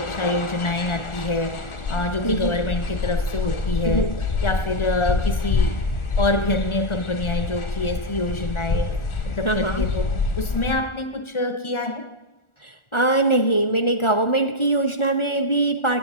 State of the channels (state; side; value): late; right; 1.4 ms